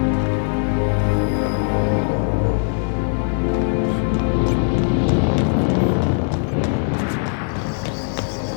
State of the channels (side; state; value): right; silent; 59 dB below the other